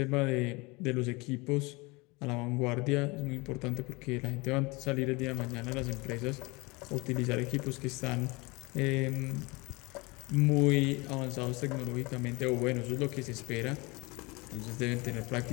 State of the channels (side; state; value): right; quieter; 25.5 dB